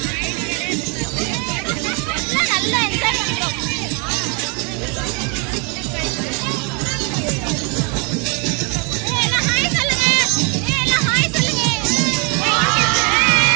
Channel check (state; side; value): quieter; left; 33.9 dB